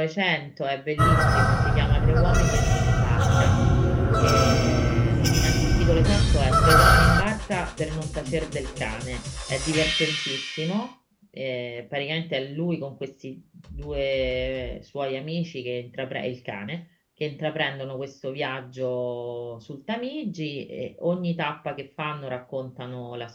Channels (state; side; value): identical; both; correlation 1.00